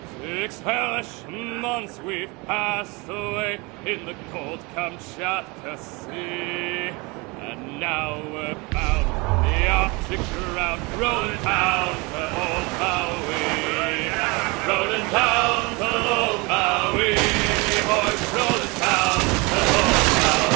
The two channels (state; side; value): quieter; left; 26.8 dB